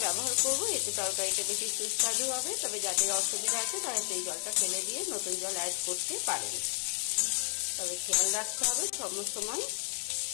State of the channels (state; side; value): silent; right; 56 dB below the other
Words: ব্যবহার করব। এতে তরকারিটা বেশি সুস্বাদু হবে। তবে যাদের অসুবিধা আছে তারা সেই জলটা ফেলে দিয়ে নতুন জল অ্যাড করতে পারেন। তবে খেয়াল রাখতে হবে সময়